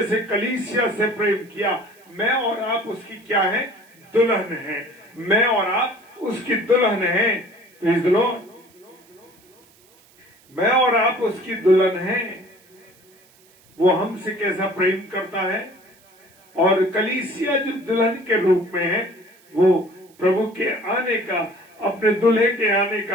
कलीसिया से प्रेम किया, मैं और आप उसकी क्या है? दुल्हन है। मैं और आप उसकी दुल्हन है। Praise the Lord. मैं और आप उसकी दुल्हन हैं। वो हमसे कैसा प्रेम करता है, और कलीसिया जो दुल्हन के रूप में है वो प्रभु के आने का, अपने दूल्हे के आने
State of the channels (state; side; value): noise; right; hiss, 30 dB below the sound